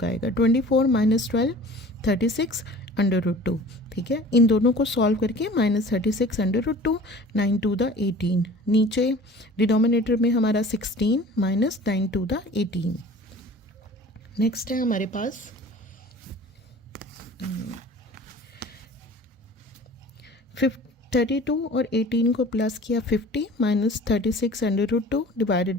आएगा। 24 माइनस 12 36 √2। ठीक है, इन दोनों को सॉल्व करके माइनस 36 √2 9 to the 18। नीचे डिनोमिनेटर में हमारा 16 माइनस 9 to the 18। नेक्स्ट है हमारे पास 32 और 18 को प्लस किया 50 माइनस 36 √2 डिवाइडेड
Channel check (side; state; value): both; normal; correlation 0.44